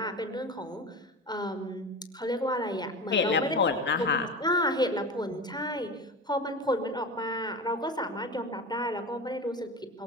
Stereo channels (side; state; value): both; normal; correlation 0.28